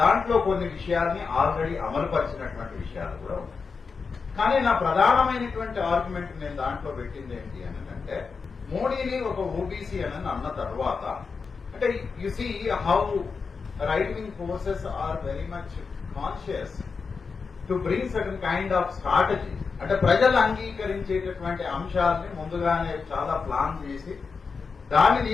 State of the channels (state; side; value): quieter; right; 5.1 dB